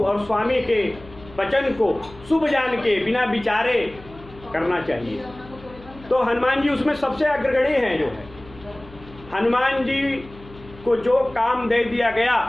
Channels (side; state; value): left; noise; hum, 21 dB below the sound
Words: और स्वामी के वचन को शुभ जान के बिना विचारे करना चाहिए। तो हनुमान जी उसमें सबसे अग्रगणी हैं। जो है हनुमान जी को जो काम दे दिया गया,